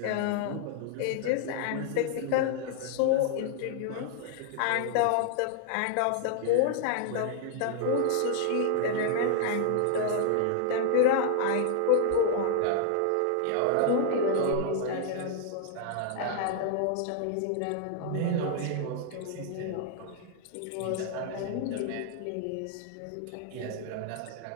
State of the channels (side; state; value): both; different; correlation 0.00